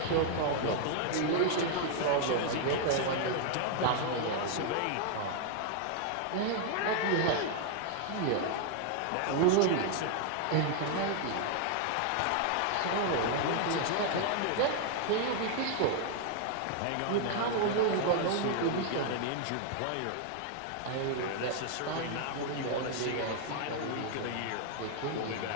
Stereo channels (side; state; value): both; different; correlation 0.00